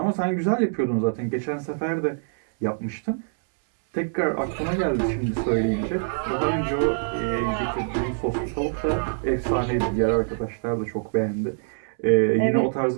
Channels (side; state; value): left; silent; 62 dB below the other